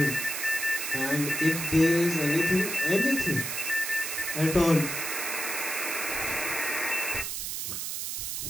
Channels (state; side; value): noise; right; hiss, 4 dB below the sound